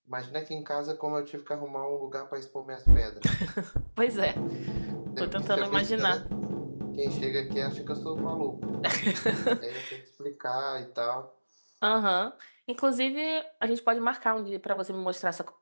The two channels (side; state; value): both; inverted; correlation -1.00